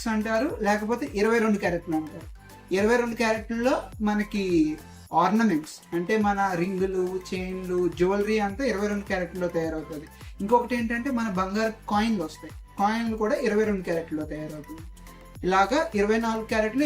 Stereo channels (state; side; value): identical; both; correlation 1.00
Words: అంటారు, లేకపోతే 22 క్యారెట్లు అంటారు. 22 క్యారెట్లలో మనకి ఆర్నమెంట్స్ అంటే మన రింగులు, చైన్లు, జ్యువెలరీ అంతా 22 క్యారెట్లో తయారవుతుంది. ఇంకొకటి ఏంటంటే మన బంగారు కాయిన్లు వస్తాయి, కాయిన్లు కూడా 22 క్యారెట్లో తయారవుతుంది. ఇలాగా 24 క్యారెట్లు,